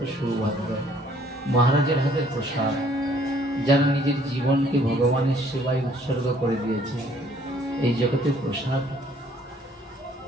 সৌভাগ্য। মহারাজের হাতের প্রসাদ, যারা নিজের জীবনকে ভগবানের সেবায় উৎসর্গ করে দিয়েছে। এই জগতে প্রসাদ,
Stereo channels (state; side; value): normal; both; correlation 0.61